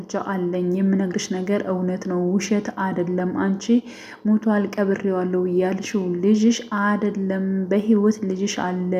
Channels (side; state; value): both; identical; correlation 1.00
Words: አለኝ፣ የምነግርሽ ነገር እውነት ነው፣ ውሸት አይደለም። አንቺ ሞቷል ቀብሬዋለሁ ያልሽው ልጅሽ አይደለም፣ በህይወት ልጅሽ አለ፣